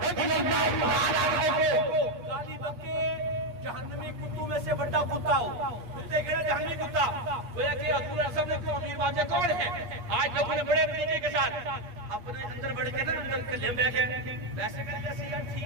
رضی اللہ تعالیٰ عنہ کو گالی بکے جہنمی کتوں میں سے بڑا کتا ہو. کتے کہنا جہنمی کتا گویا کہ حضور اعظم نے کو امیر معاویہ کون ہے؟ آج لوگوں نے بڑے طریقے کے ساتھ اپنے اندر بڑھ کے نا اندر کلیم بے کے ویسے کریں جیسے یار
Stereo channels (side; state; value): left; late; 8.4 ms